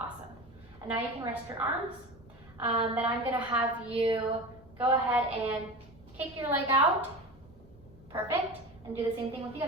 And now you can rest your arms. Then I'm gonna have you go ahead and kick your leg out, perfect, and do the same thing with the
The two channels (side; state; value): both; normal; correlation 0.29